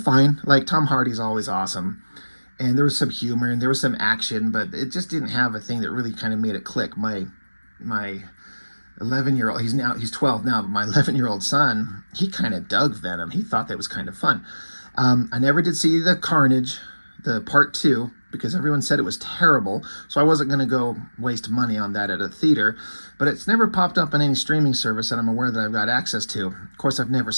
fine. Tom Hardy's always awesome. And there was some humor and there was some action, but it just didn't have a thing that really kind of made it click. My 11-year-old, he's 12 now, but my 11-year-old son, he kind of dug Venom. He thought that was kind of fun. I never did see the Carnage, the part 2, because everyone said it was terrible. So I wasn't going to go waste money on that at a theater. But it's never popped up on any streaming service that I'm aware that I've got access to. Of course, I've never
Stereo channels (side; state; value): both; inverted; correlation -1.00